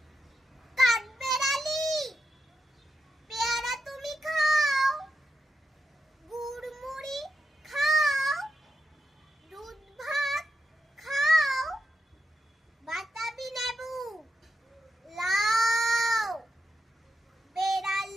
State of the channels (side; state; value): both; normal; correlation 0.86